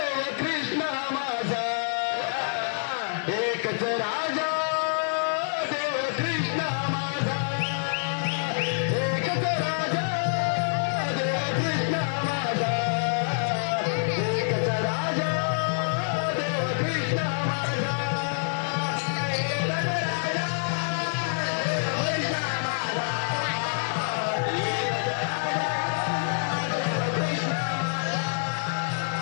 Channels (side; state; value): right; silent; digital silence